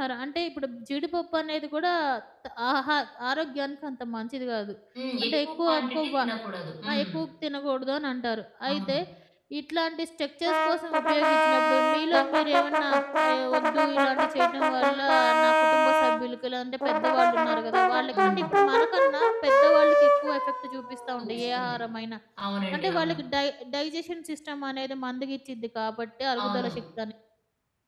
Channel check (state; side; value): identical; both; correlation 1.00